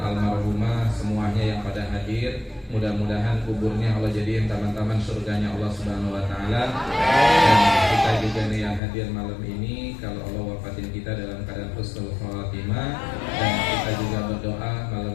semuanya yang pada hadir. Mudah-mudahan kuburnya Allah jadiin taman-taman surganya Allah Subhanahu wa taala. Dan kita juga nih yang hadir malam ini, kalau Allah wafatin kita dalam keadaan husnul khatimah, dan kita juga berdoa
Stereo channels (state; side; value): drops out; right; at 8.8 s